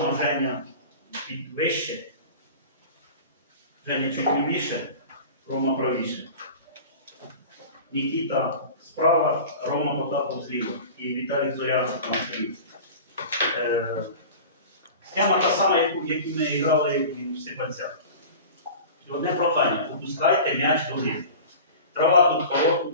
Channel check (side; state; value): both; inverted; correlation -0.36